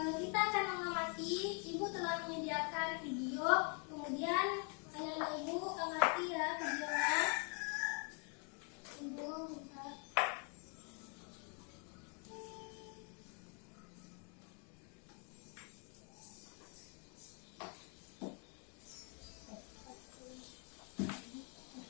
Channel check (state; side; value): quieter; right; 38.2 dB